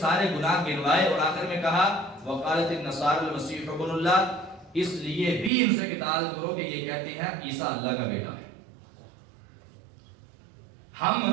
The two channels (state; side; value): drops out; left; at 5.5 s